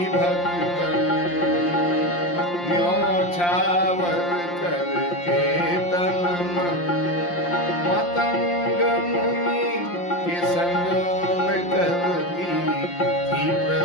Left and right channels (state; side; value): late; right; 5.7 ms